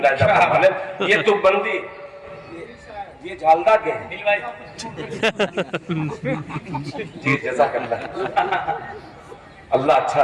ये तो बंदी ये झालदा के जी जज़ाकल्लाह अल्लाह अच्छा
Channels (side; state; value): both; identical; correlation 1.00